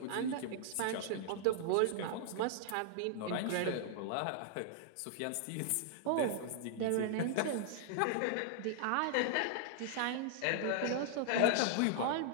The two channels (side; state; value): both; different; correlation 0.00